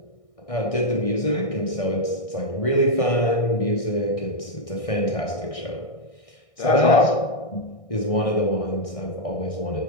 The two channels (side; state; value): right; late; 1.6 ms